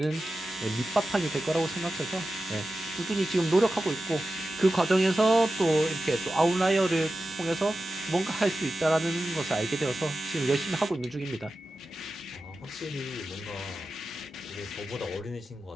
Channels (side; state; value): both; normal; correlation 0.93